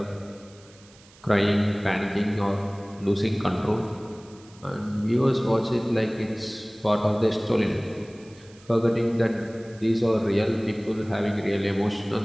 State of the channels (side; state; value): right; noise; hiss, 26 dB below the sound